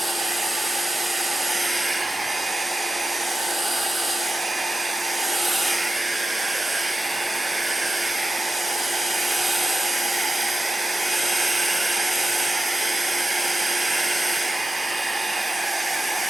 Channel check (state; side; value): normal; both; correlation 0.92